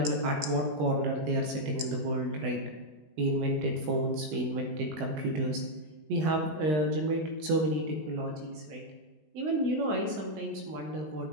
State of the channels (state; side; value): late; left; 20 ms